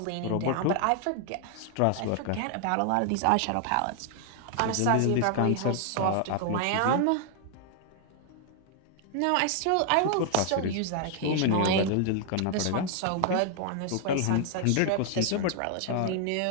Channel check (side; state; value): both; different; correlation 0.00